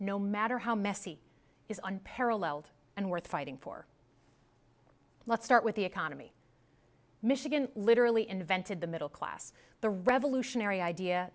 matter how messy, is unparalleled and worth fighting for. Let's start with the economy. Michigan literally invented the middle class, the revolutionary idea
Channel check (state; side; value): identical; both; correlation 1.00